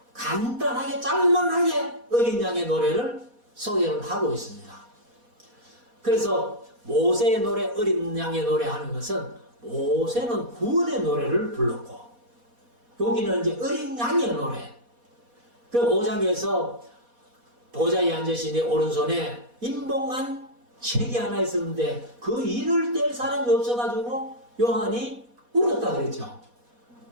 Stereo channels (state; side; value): late; left; 4.1 ms